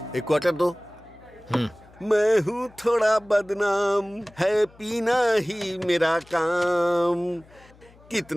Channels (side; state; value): left; noise; hum, 26 dB below the sound